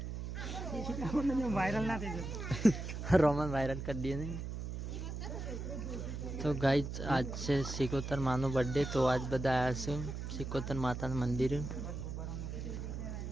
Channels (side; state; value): right; noise; hum, 5 dB below the sound